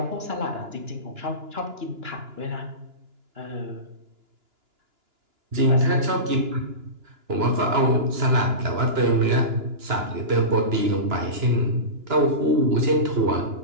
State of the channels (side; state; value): left; late; 2.9 ms